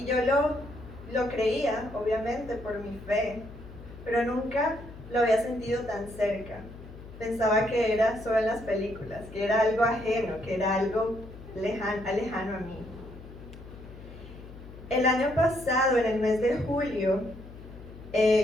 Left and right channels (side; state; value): left; noise; hum, 16 dB below the sound